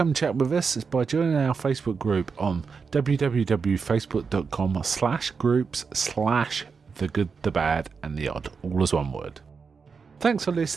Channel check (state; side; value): quieter; left; 5.4 dB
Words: chat with us by joining our Facebook group on www.facebook.com/groups/The Good, The Bad and The Odd, all as one word. Thanks for